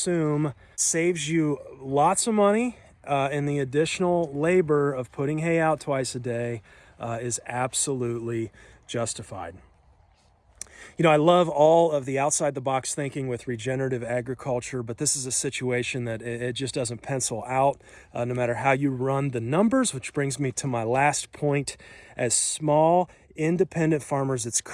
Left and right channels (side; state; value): both; identical; correlation 1.00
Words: saves you lots of money, and the additional labor of putting hay out twice a day is absolutely justified. You know, I love all of the outside-the-box thinking with regenerative agriculture, but this is a situation that it just doesn't pencil out no matter how you run the numbers, which brings me to my last point. As small, independent farmers, it's